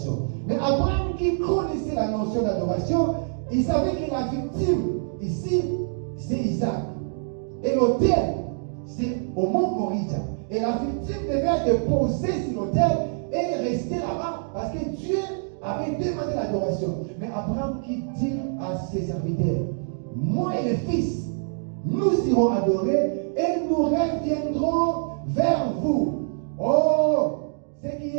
Mais Abraham, qui connaissait la notion d'adoration, il savait que la victime, ici, c'est Isaac. Et l'autel, c'est au mont Moriah. Et la victime devait être déposée sur l'autel et rester là-bas parce que Dieu avait demandé l'adoration. Mais Abraham qui dit à ses serviteurs, moi et les fils, nous irons adorer et nous reviendrons vers vous. Oh, ce qui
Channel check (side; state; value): left; silent; digital silence